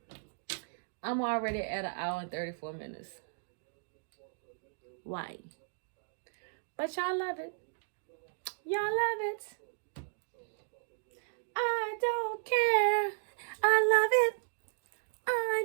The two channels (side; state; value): left; silent; digital silence